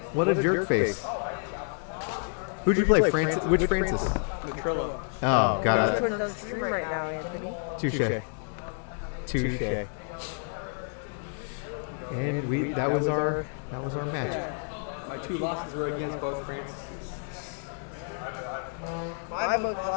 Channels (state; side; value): silent; right; 58 dB below the other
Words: a jerk face. Who'd you play? Francis? Which Francis? Trillo. Oh, got We're it. on stream right now, Anthony. Touche. And that was our match. My 2 losses were against both Francis. My both